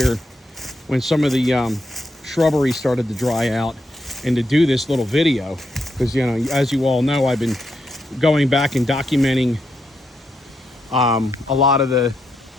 when some of the shrubbery started to dry out, and to do this little video, because, you know, as you all know, I've been going back and documenting a lot of the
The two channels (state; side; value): normal; both; correlation 0.81